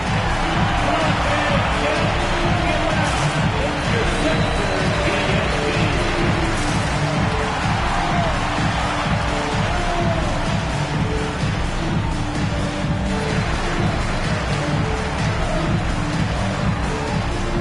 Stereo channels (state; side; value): identical; both; correlation 1.00